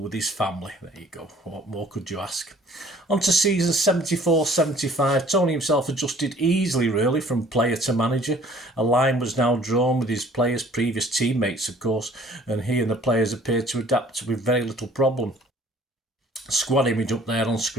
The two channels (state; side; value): normal; both; correlation 0.54